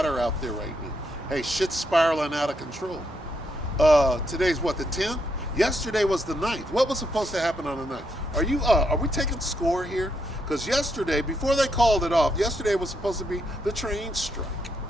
out there right now? Hey, shit's spiraling out of control. Today's what, the 10th? Yesterday was the 9th. What was supposed to happen on the 9th? Are we taking score here? Because yesterday, before they called it off, yesterday was supposed to be the train strike,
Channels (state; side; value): normal; both; correlation 0.78